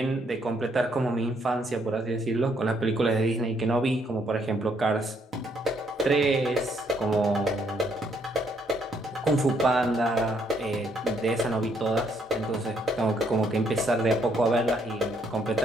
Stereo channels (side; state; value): both; normal; correlation 0.70